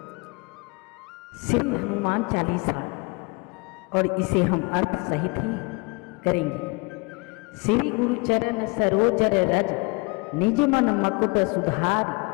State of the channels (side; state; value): right; quieter; 29.2 dB